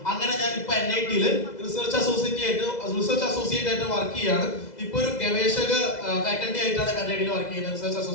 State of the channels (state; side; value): late; right; 2.0 ms